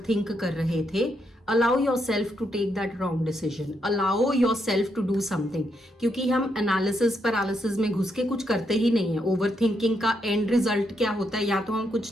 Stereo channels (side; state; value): both; normal; correlation 0.78